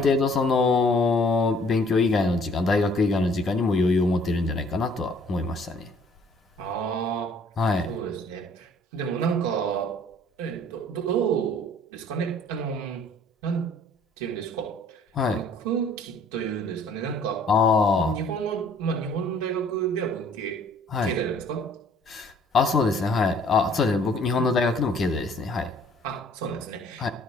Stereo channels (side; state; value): both; normal; correlation 0.57